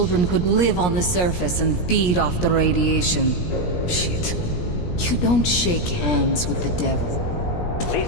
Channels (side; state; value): right; late; 17 ms